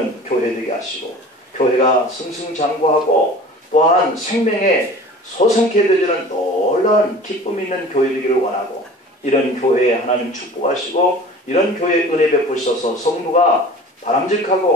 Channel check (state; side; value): normal; both; correlation 0.42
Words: 교회 되게 하시고 교회가 승승장구하고 또한 생명에 소생케 되지는 놀라운 기쁨 있는 교회 되기를 원하고 이런 교회에 하나님 축복하시고 이런 교회에 은혜 베푸셔서 성도가